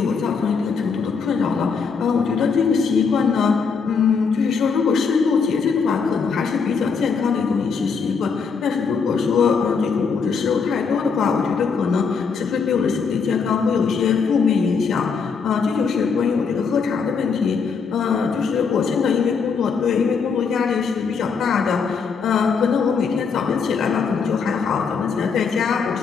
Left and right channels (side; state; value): right; quieter; 5.6 dB